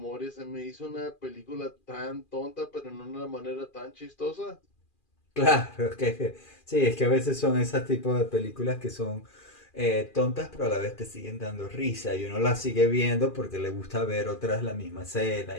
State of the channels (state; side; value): late; right; 2.4 ms